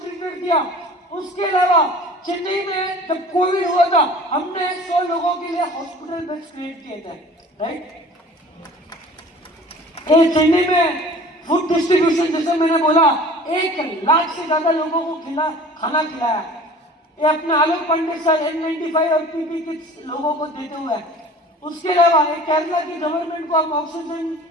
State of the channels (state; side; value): normal; both; correlation 0.44